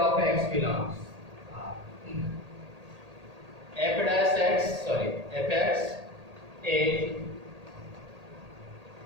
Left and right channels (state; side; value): late; left; 1.8 ms